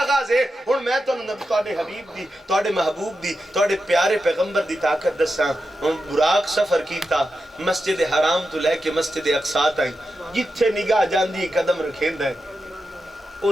ہے. ہون میں تو نبی توڑے حبیب دی، توڑے محبوب دی، توڑے پیارے پیغمبر دی طاقت دساں. ہون براق سفر کیتا مسجد حرام تو لے کے مسجد اقصا تائیں، جتھے نگاہ جاندی قدم رکھیندہ ہے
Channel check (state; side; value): normal; both; correlation 0.89